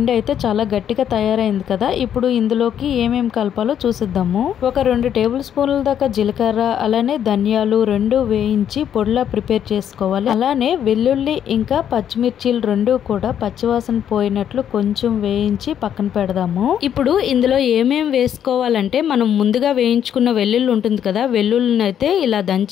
అయితే చాలా గట్టిగా తయారైంది కదా. ఇప్పుడు ఇందులోకి ఏమేమి కలపాలో చూసిద్దాము. ఒక 2 టేబుల్ స్పూన్ల దాకా జీలకర్ర, అలానే ధనియాలు 2 వేయించి పొడిలా ప్రిపేర్ చేసుకోవాలి. అలానే వెల్లుల్లి ఇంకా పచ్చిమిర్చీలు 2 కూడా పచ్చివాసన పోయినట్లు కొంచెం వేయించి పక్కన పెడదాము. ఇప్పుడు ఇందులో ఏమేమి వేసుకోవాలంటే మనం ముందుగా వేయించుకున్న వెల్లుల్లి ఉంటుంది కదా, వెల్లుల్లిని అయితే ఇలా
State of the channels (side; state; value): right; quieter; 9.4 dB